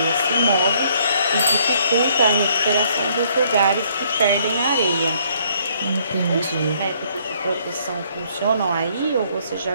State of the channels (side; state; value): both; inverted; correlation -0.65